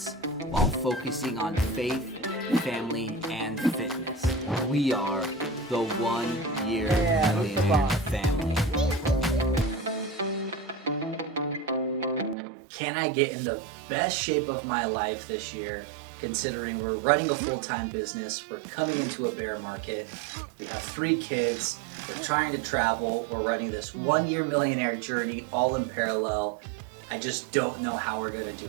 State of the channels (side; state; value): left; drops out; at 12.4 s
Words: while focusing on faith, family, and fitness. We are the 1 Year Millionaire family. Can I get in the best shape of my life this year, considering we're running a full-time business, we're coming into a bear market, we have 3 kids, we're trying to travel, we're running this 1 Year Millionaire journey all in parallel. I just don't know how we're gonna